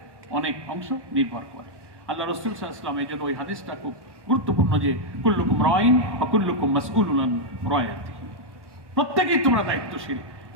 অনেক অংশ নির্ভর করে। আল্লাহ রাসূল সাল্লাল্লাহু আলাইহি ওয়াসাল্লাম এই জন্য ওই হাদিসটা খুব গুরুত্বপূর্ণ যে কুল্লুকুম রাইন ওয়া কুল্লুকুম মাসউলুন আন রায়াতিহি, প্রত্যেকেই তোমরা দায়িত্বশীল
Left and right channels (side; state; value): left; late; 1.1 ms